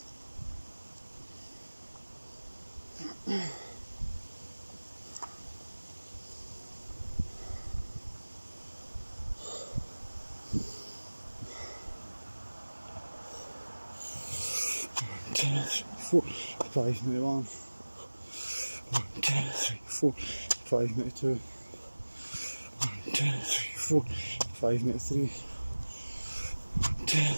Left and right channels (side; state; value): both; inverted; correlation -1.00